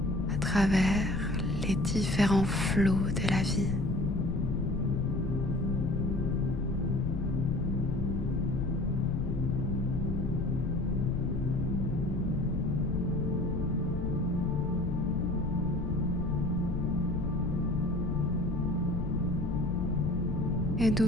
à travers les différents flots de la vie. Et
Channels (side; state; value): left; noise; rumble, 3 dB below the sound